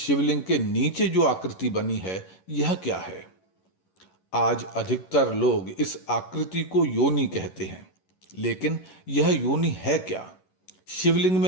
के नीचे जो आकृति बनी है यह क्या है। आज अधिकतर लोग इस आकृति को योनि कहते हैं, लेकिन यह योनि है क्या? शिवलिंग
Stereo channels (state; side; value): late; right; 11 ms